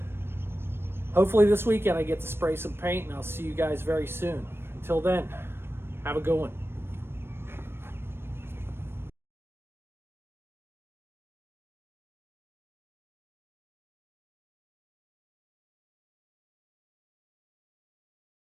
hopefully this weekend I get to spray some paint, and I'll see you guys very soon. Until then, have a good one.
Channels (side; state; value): left; late; 0.12 ms